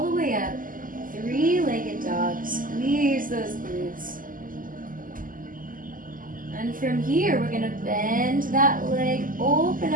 the way up. Three-legged dog. Squeeze those glutes. And from here, we're going to bend that leg, open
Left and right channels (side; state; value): left; late; 0.40 ms